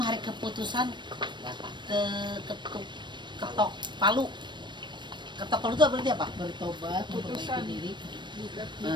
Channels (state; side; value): late; left; 0.22 ms